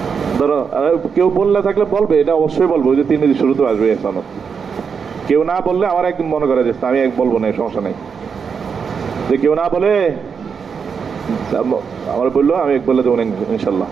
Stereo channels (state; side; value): quieter; left; 6.2 dB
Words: ধরো কেউ বললে থাকলে বলবে, এটা অবশ্যই বলবো, ওই যে 3 শুরুতে আসবে এসানত। কেউ না বললে আমার একদিন মনে করে যে আমি এক বলবো না, সমস্যা নেই। যে কেউ না বলে আমার বললো, আমি এক বলে দেবো ইনশাল্লাহ।